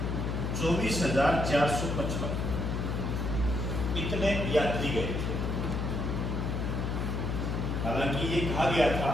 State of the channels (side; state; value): left; noise; hum, 1 dB below the sound